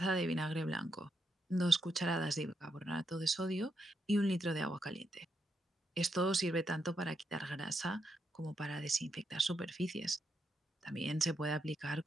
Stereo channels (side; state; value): both; normal; correlation 0.81